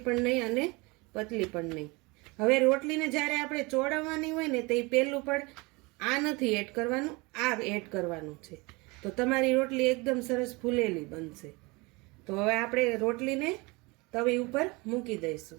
પણ નહીં અને પતલી પણ નહીં. હવે રોટલીને જ્યારે આપણે ચોળવવાની હોય ને તે પહેલું પણ આ નથી એડ કરવાનું, આ એડ કરવાનું છે. તો તમારી રોટલી એકદમ સરસ ફૂલેલી બનશે. તો હવે આપણે રોટલીને તવી ઉપર મૂકી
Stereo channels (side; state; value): left; quieter; 25.7 dB